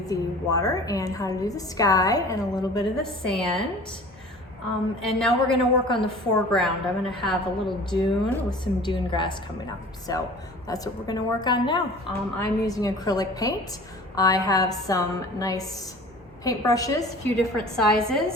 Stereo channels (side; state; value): both; normal; correlation 0.43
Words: the water and how to do the sky and a little bit of the sand. And now we're gonna work on the foreground. I'm gonna have a little dune with some dune grass coming up. So that's what we're gonna work on now. I'm using acrylic paint. I have some nice paintbrushes, a few different